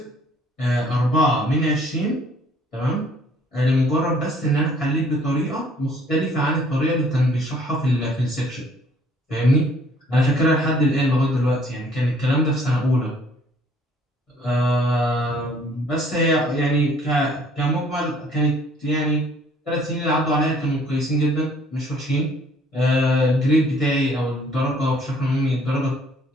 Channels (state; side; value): normal; both; correlation 0.59